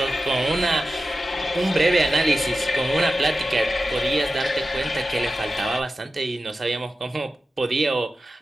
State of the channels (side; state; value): both; normal; correlation 0.93